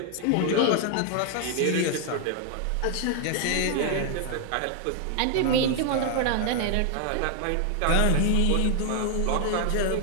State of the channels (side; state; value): both; different; correlation 0.00